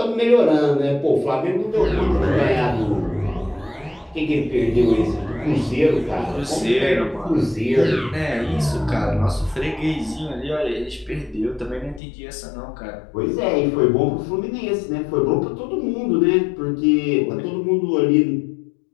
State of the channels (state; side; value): drops out; right; at 12.0 s